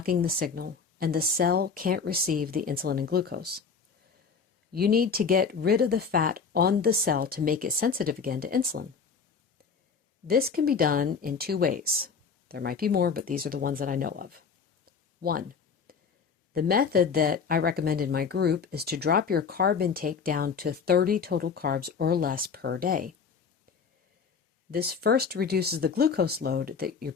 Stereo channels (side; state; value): right; quieter; 5.7 dB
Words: the signal and the cell can't receive the insulin and glucose. You need to get rid of the fat on the cell to make it sensitive again to insulin. This can be done in two ways. There might be more, but these are the ones that I know of. One, the method that I recommend in my group is to drop your carb intake down to 30 total carbs or less per day. This first reduces the glucose load that your